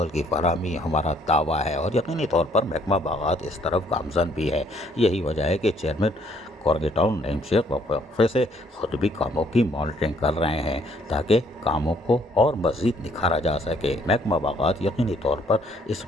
की फराहमी हमारा दावा है और यकीनी तौर पर महकमा बागात इस तरफ गामजन भी है। यही वजह है कि चेयरमैन कोरंगी टाउन नईम शेख वक्फे से खुद भी कामों की मॉनिटरिंग कर रहे हैं ताकि कामों को और मज़ीद निखारा जा सके। महकमा बागात यकीनी तौर पर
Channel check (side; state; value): both; normal; correlation 0.65